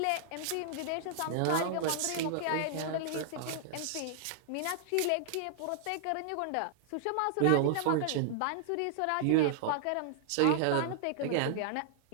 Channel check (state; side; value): different; both; correlation -0.01